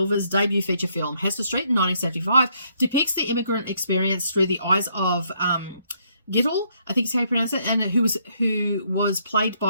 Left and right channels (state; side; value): inverted; both; correlation -0.71